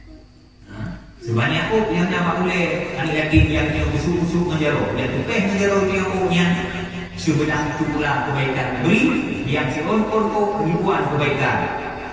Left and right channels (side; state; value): both; identical; correlation 1.00